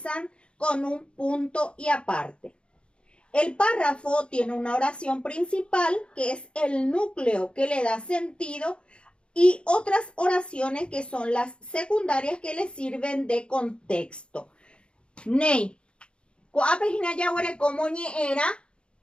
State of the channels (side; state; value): right; late; 0.056 ms